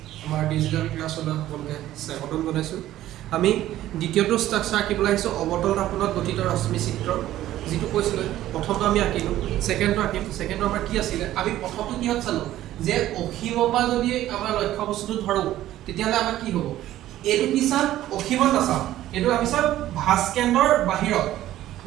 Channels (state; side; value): quieter; left; 13.8 dB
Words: আমাৰ digital ক্লাছলৈ সকলোকে স্বাগতম জনাইছোঁ। আমি দ্বিতীয়টো ষ্ট্ৰাকচাৰ আঁকিবলৈ আহিছোঁ অৱতল দাপোনত গঠিত ৰশ্মি চিত্ৰ, যিটো কৈছিলোঁ প্ৰথমটো আমি আঁকিলোঁ, ছেকেণ্ডটো আঁকিম। ছেকেণ্ডটো আমাৰ কি আছিলে, আমি প্ৰথমটো কিহত চালোঁ যে অসীমৰ পৰা যদি আমাৰ লক্ষ্য বস্তুটো ধৰোঁ তেতিয়াহ'লে আমাৰ কি হ'ব, এইটো কি চাম অসীমত নাচাওঁ, এইটো আমি চাম ভাঁজ কেন্দ্ৰৰ বাহিৰত।